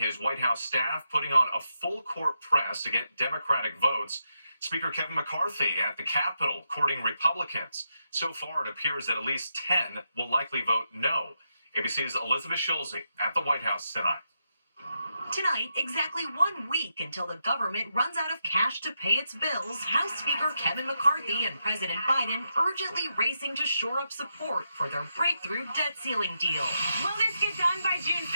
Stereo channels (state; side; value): inverted; both; correlation -0.84